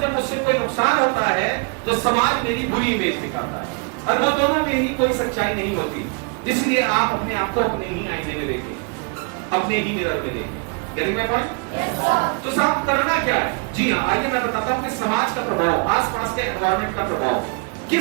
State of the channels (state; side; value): quieter; left; 33.5 dB